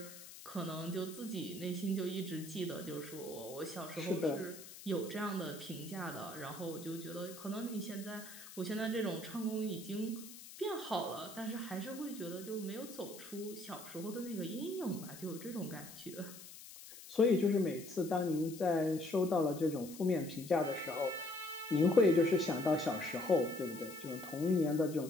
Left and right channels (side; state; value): left; noise; hiss, 15 dB below the sound